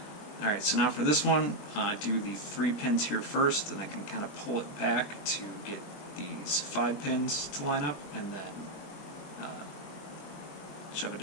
All right. So now for this one, I do the 3 pins here first, and I can kind of pull it back to get these 5 pins to line up, and then shove it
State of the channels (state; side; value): late; right; 21 ms